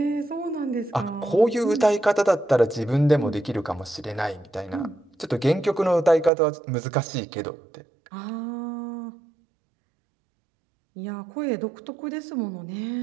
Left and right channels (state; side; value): drops out; left; at 6.3 s